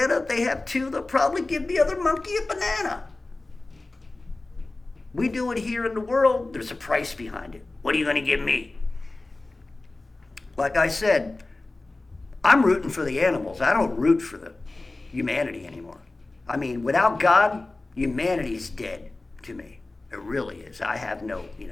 if they have two, they'll probably give the other monkey a banana. We do it here in the world, there's a price behind it. What are you going to give me? Like I said, I'm rooting for the animals. I don't root for the humanity anymore. I mean, without God, humanity's dead to me. It really is. I have no,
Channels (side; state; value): right; quieter; 3.1 dB